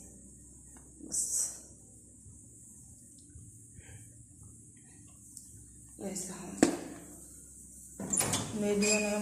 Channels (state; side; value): identical; both; correlation 1.00